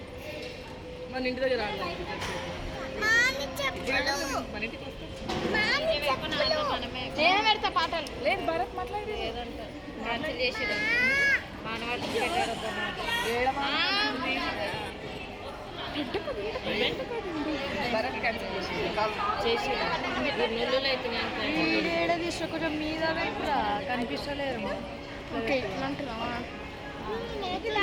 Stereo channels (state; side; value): identical; both; correlation 1.00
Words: మన ఇంటి దగ్గర రాదు మన ఇంటికి నేను పెడతా పాటలు లేదు భరత్ మాట్లాడి భరత్ క్యాన్సిల్ చేసి ఏడ తీసుకో కొంచెం మీద కూడా కనిపిస్తలేరు ఓకే ఇట్లా అంటున్నావా